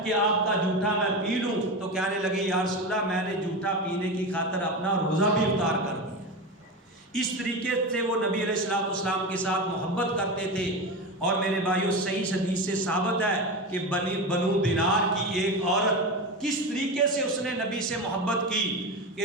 کہ آپ کا جھوٹا میں پی لوں، تو کہنے لگی یا رسول اللہ میں نے جھوٹا پینے کی خاطر اپنا روزہ بھی افطار کر دیا۔ اس طریقے سے وہ نبی علیہ الصلوۃ والسلام کے ساتھ محبت کرتے تھے۔ اور میرے بھائیوں صحیح حدیث سے ثابت ہے کہ بنو دینار کی ایک عورت کس طریقے سے اس نے نبی سے محبت کی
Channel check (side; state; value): both; normal; correlation 0.22